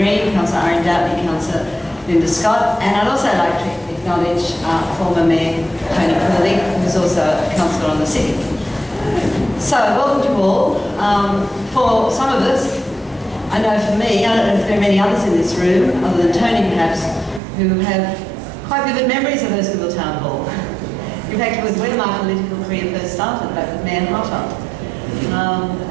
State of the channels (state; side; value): drops out; left; at 17.4 s